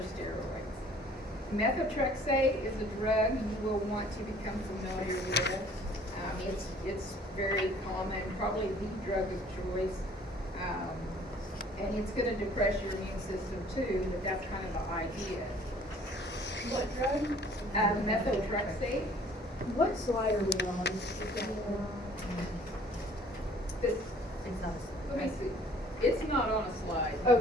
steroids. Methotrexate is a drug you will want to become familiar with. It's very common, probably the drug of choice. And it's going to depress your immune system too, but that's kind of the idea. What drug? Methotrexate. What slide are we on? This, let me see. It's not on a slide.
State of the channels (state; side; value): normal; both; correlation 0.55